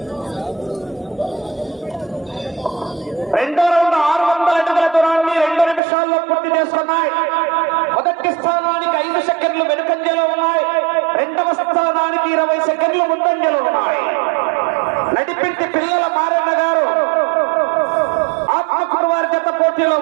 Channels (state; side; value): drops out; left; at 5.8 s